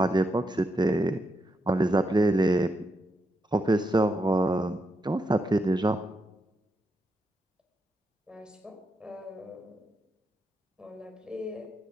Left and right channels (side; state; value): both; normal; correlation 0.82